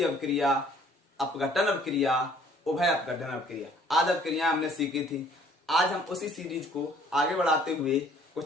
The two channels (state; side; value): normal; both; correlation 0.57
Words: अवक्रिया, अपघटन अवक्रिया, उभय अपघटन अवक्रिया आदि अवक्रियाएं हमने सीखी थी। आज हम उसी सीरीज को आगे बढ़ाते हुए